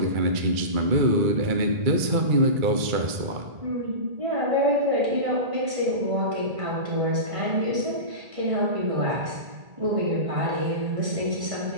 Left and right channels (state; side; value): late; left; 2.3 ms